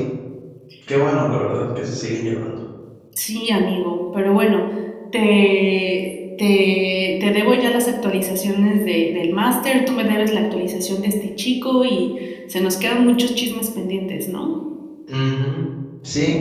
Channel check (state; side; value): identical; both; correlation 1.00